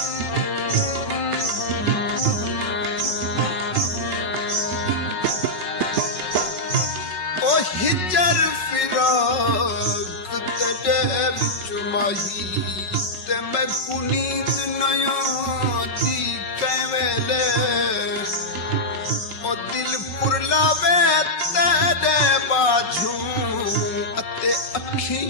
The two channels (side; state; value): right; late; 5.4 ms